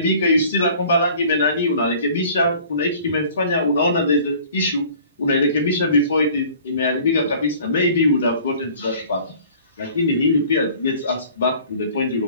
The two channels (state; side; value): inverted; both; correlation -0.50